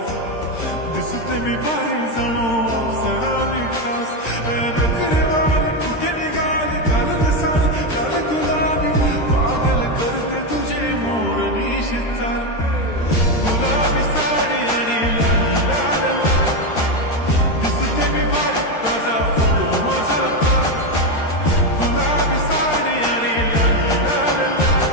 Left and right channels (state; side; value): late; right; 13 ms